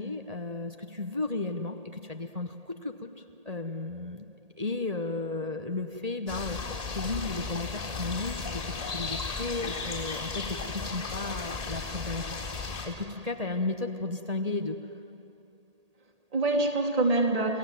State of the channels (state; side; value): late; left; 1.8 ms